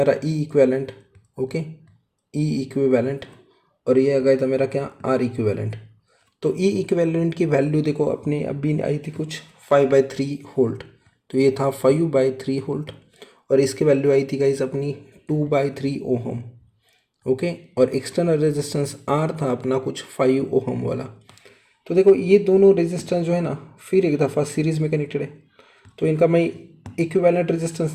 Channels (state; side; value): identical; both; correlation 1.00